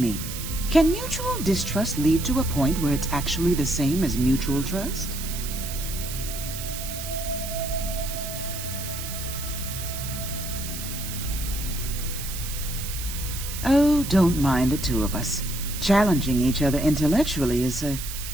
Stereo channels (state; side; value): noise; right; hiss, 8 dB below the sound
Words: can mutual distrust lead to a point where it's actually the same as mutual trust? Oh, don't mind the two of us. Challenging each other intellectually is a